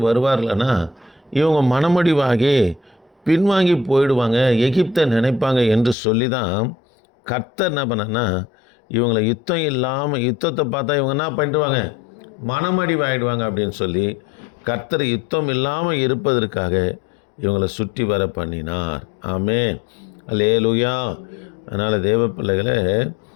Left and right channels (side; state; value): right; drops out; at 6.0 s